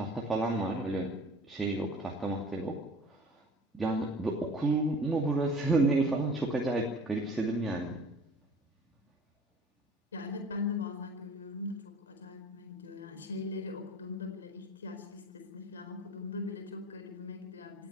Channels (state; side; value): normal; both; correlation 0.46